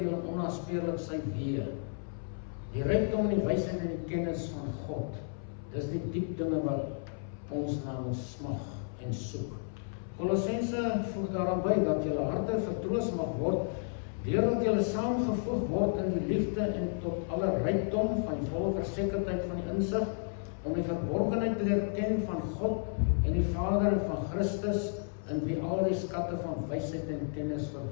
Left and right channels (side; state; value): right; silent; 56 dB below the other